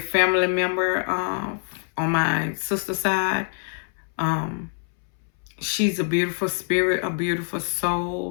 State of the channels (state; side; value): silent; right; 62 dB below the other